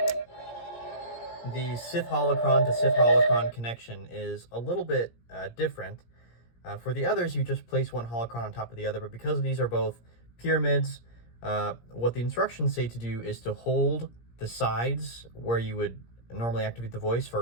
The Sith Holocron to Sith Holocron connection is a little bit different. For the others, you just place one holocron on top of the other, but because these are both pyramids, what the instructions say to do is to hold the sides where you would normally activate the voice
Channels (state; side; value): late; right; 17 ms